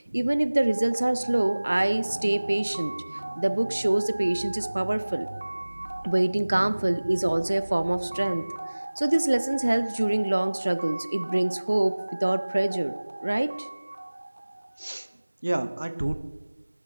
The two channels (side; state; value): both; inverted; correlation -1.00